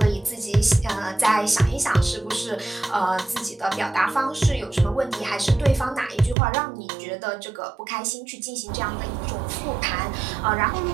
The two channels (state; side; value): drops out; left; at 6.4 s